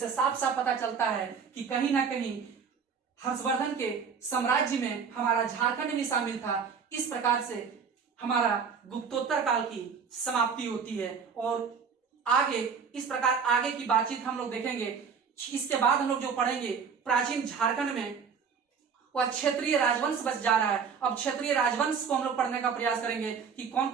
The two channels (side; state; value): left; quieter; 6.2 dB